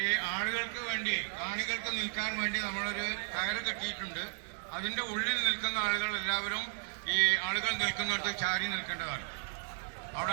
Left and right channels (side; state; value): left; silent; 55 dB below the other